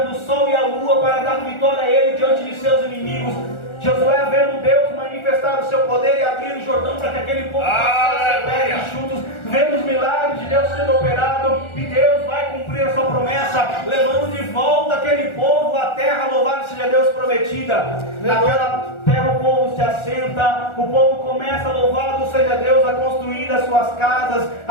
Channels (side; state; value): right; late; 1.4 ms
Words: o sol e a lua para dar vitória a ele diante de seus inimigos. Josué vendo Deus manifestar o seu poder e abrir o Jordão para que aquele povo passasse pés enxutos, vendo os milagres de Deus sendo operado, e Deus vai cumprir a sua promessa, levando de volta aquele povo à terra, louvado seja Deus, prometida. Naquela terra o povo se assenta, o povo começa, louvado seja Deus, a construir as suas casas,